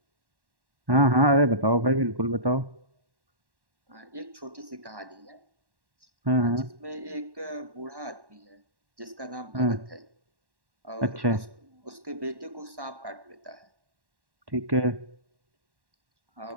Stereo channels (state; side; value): late; left; 1.1 ms